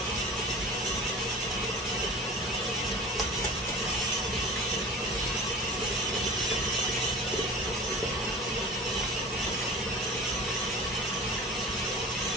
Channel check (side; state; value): both; normal; correlation 0.38